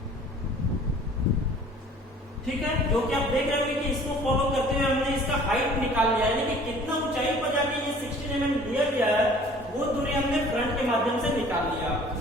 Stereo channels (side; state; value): both; normal; correlation 0.50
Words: ठीक है, जो कि आप देख रहे होंगे कि इसको फॉलो करते हुए हमने इसका हाइट निकाल लिया, यानी कि कितना ऊंचाई पर जाके ये 16 mm लिया गया है, वो दूरी हमने फ्रंट के माध्यम से निकाल लिया।